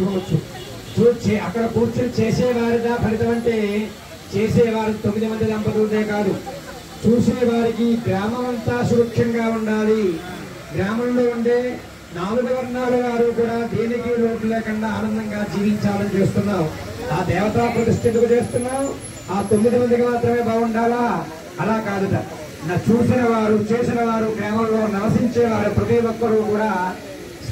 అక్కడ కూర్చొని చేసేవారిగా ఫలితం అంటే చేసేవారు 9 మంది దంపతులదే కాదు, చూసేవారికి గ్రామం అంతా సురక్షంగా ఉండాలి. గ్రామంలో ఉండే 4 వర్ణాల వారు కూడా దేనికి లోటు లేకుండా ఆనందంగా జీవించాలని చేస్తున్నాం. ఆ దేవతా ప్రతిష్ఠకు చేస్తున్నాం. ఆ 9 మందికి మాత్రమే బాగుండాలా? అలా కాదుట. చూసిన వారు, చేసిన వారు, గ్రామంలో నివసించేవారు ప్రతి ఒక్కరూ కూడా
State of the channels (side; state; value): both; identical; correlation 1.00